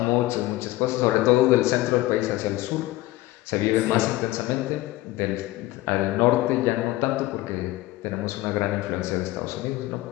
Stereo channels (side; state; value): right; quieter; 17.9 dB